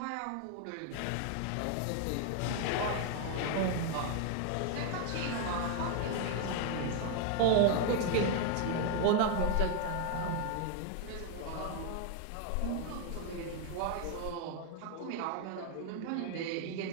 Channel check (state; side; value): different; both; correlation 0.01